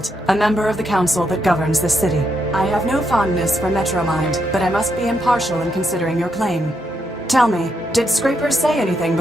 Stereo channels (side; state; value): both; normal; correlation 0.79